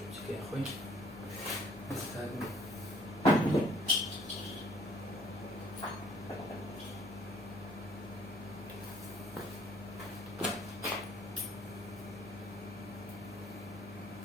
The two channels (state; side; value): normal; both; correlation 0.60